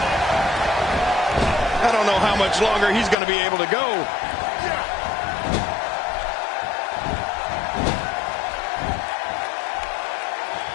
I don't know how much longer he's going to be able to go.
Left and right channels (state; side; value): drops out; right; at 3.2 s